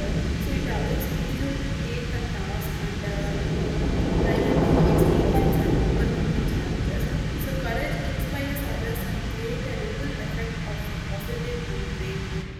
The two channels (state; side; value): identical; both; correlation 1.00